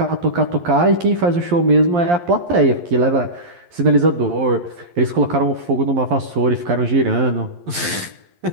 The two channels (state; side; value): late; left; 11 ms